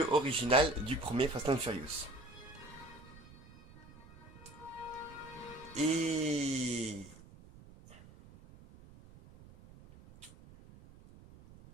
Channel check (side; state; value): right; noise; rumble, 20 dB below the sound